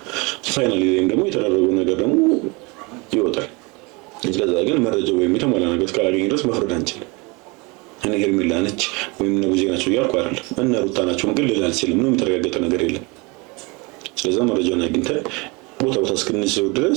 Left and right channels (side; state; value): left; quieter; 27.5 dB